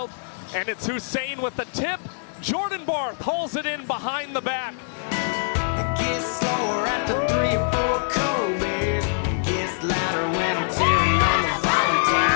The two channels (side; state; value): right; silent; digital silence